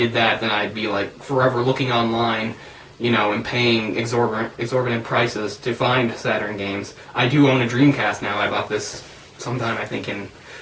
that, then I'd be, forever looking online, and paying exorbitant prices to find Saturn games. I do own a Dreamcast now. I bought this sometime, I think, in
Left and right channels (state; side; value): identical; both; correlation 1.00